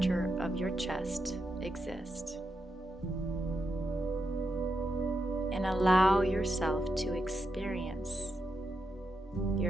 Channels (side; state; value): both; normal; correlation 0.85